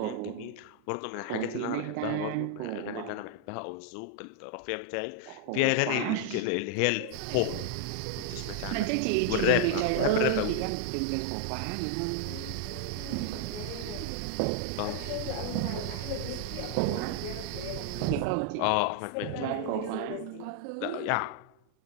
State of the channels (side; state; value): both; different; correlation 0.00